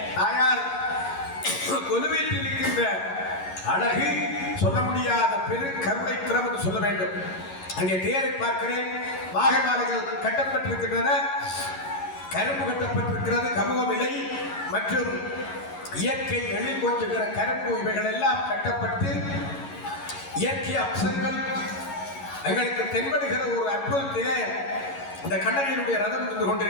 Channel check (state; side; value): late; right; 11 ms